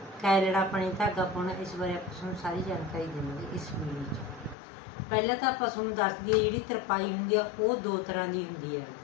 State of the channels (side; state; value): right; drops out; at 4.5 s